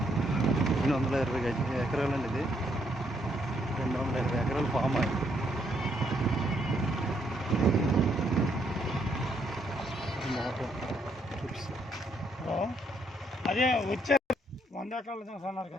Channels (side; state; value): both; normal; correlation 0.73